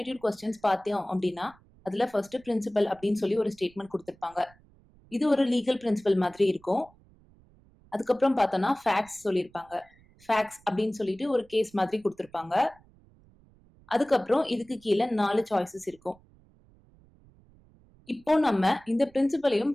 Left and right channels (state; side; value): noise; right; rumble, 28 dB below the sound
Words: கொஸ்டின்ஸ் பார்த்தோம் அப்படின்னா அதுல ஃபர்ஸ்ட் பிரின்சிபல் அப்படின்னு சொல்லி ஒரு ஸ்டேட்மெண்ட் கொடுத்திருப்பாங்க. இது ஒரு லீகல் பிரின்சிபல் மாதிரி இருக்கும். அதுக்கப்புறம் பார்த்தோம்னா ஃபேக்ட்ஸ் சொல்லியிருப்பாங்க. ஃபேக்ட்ஸ் அப்படின்னு சொல்லிட்டு ஒரு கேஸ் மாதிரி கொடுத்திருப்பாங்க. அதுக்கப்புறம் இதுக்கு கீழே 4 சாய்ஸஸ் இருக்கும். இப்போ நம்ம இந்த பிரின்சிபலையும்